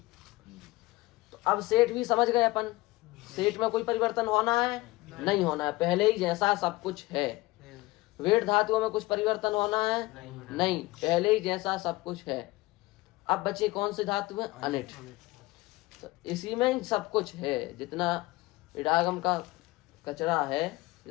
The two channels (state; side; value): quieter; right; 20.5 dB